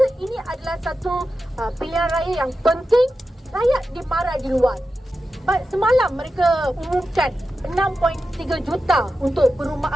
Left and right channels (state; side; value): normal; both; correlation 0.91